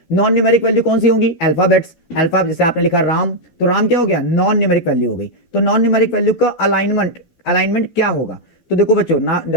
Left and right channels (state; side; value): late; right; 12 ms